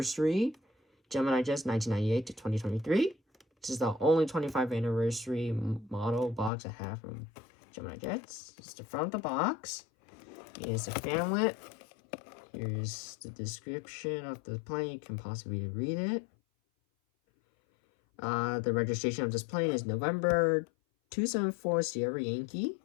GeminiJets 1998 to 2023. This is the only 25th anniversary model box I have from GeminiJets. It's the front of the box. Here's the fanlet. Here's the description of the plane. You can possibly read it. The registration of this plane is November 274 Sierra Yankee.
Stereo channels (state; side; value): drops out; right; at 6.5 s